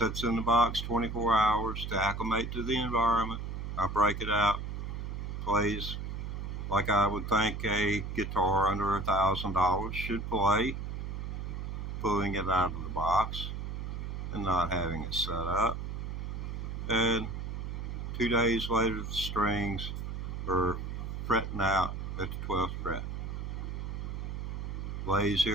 in the box 24 hours to acclimate to the environment. I break it out, plays like I would think a guitar under $1,000 should play, pulling it out of the box and not having it set up. And 2 days later, the strings are fretting out at the 12th fret. Lays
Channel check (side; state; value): right; noise; hum, 5 dB below the sound